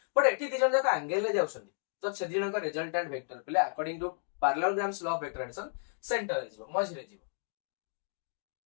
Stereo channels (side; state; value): right; silent; digital silence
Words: बट एठी दी जण जाका एंगल ले जाउछन तो से दी जण का रिजल्टेंट वेक्टर प्ले according to parallelograms law of vector addition centre रे जिवो मझी रे जिवो